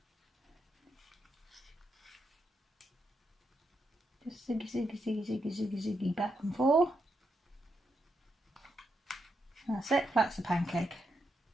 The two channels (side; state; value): both; normal; correlation 0.82